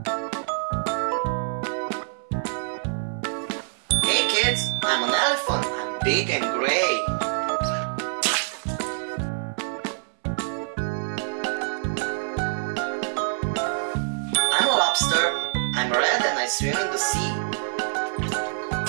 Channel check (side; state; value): left; silent; 61 dB below the other